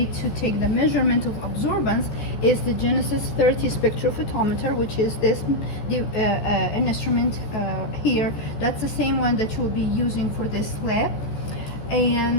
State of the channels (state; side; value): late; right; 14 ms